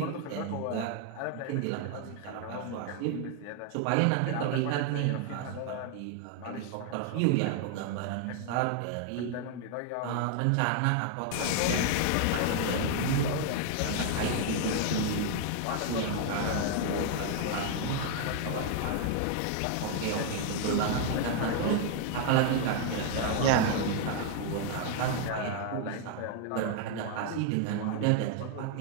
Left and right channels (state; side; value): different; both; correlation 0.00